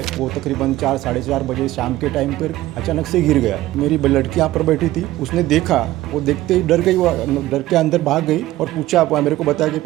वो तकरीबन 4 साढ़े 4 बजे शाम के टाइम पर अचानक से गिर गया। मेरी लड़की यहाँ पर बैठी थी, उसने देखा, वो देखते ही डर गई, वो डर के अंदर भाग गई और पूछा, मेरे को बताया कि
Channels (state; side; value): quieter; left; 16.0 dB